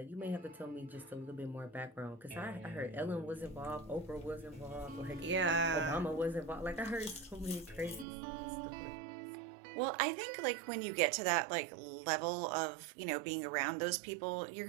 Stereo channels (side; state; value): left; drops out; at 8.1 s